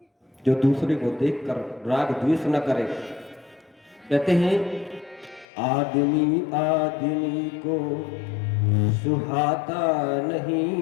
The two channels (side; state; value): right; drops out; at 5.5 s